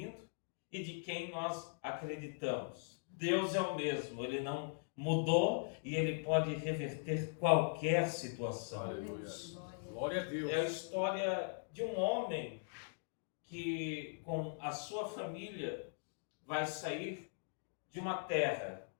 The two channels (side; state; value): right; silent; digital silence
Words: e de quem nós acreditamos. Deus é o mesmo, Ele não mudou e Ele pode reverter qualquer situação. Aleluia. Glória a Deus. É a história de um homem que, com a sua família, vai sair de uma terra.